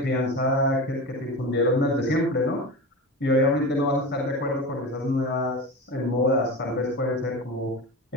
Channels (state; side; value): normal; both; correlation 0.28